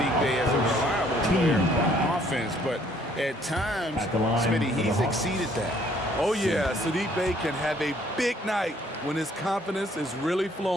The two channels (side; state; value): both; normal; correlation 0.62